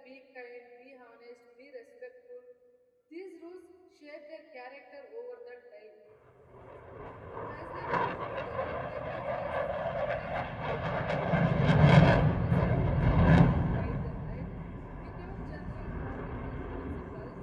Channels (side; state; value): both; identical; correlation 1.00